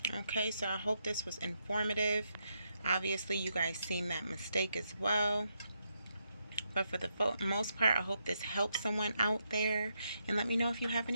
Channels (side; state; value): both; inverted; correlation -0.80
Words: Okay, so I hope this was informative. Obviously, you guys seen that mistake as well. But for the most part, I hope this helps someone out there. And let me know if you have